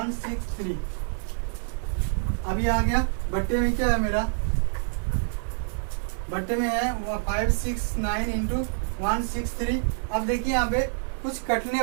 अब ये आ गया बट्टे में, क्या है मेरा बट्टे में है 569 इंटू 163। अब देखिए यहाँ पे कुछ कटने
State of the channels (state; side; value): silent; left; digital silence